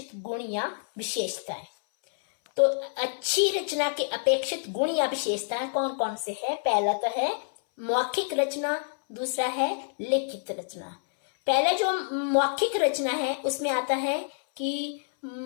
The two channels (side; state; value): right; silent; 60 dB below the other